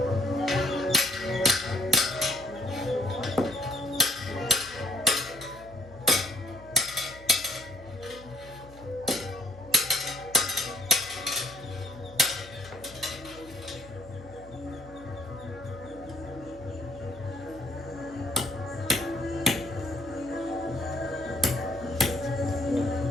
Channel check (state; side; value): noise; left; hum, 19 dB below the sound